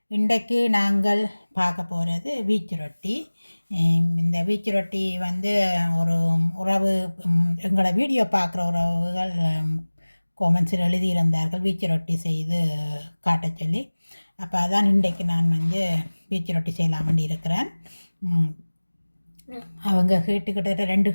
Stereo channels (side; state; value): both; inverted; correlation -1.00